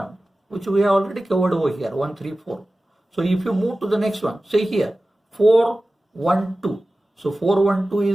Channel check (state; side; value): normal; both; correlation 0.96